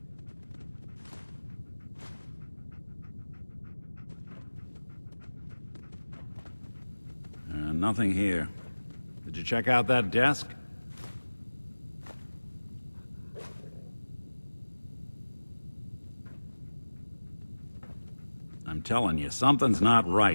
Nothing here. Did you check out that desk? I'm telling you, something's not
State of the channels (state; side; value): inverted; both; correlation -1.00